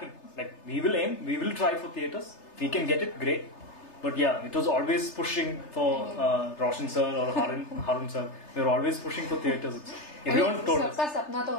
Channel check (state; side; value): late; right; 3.3 ms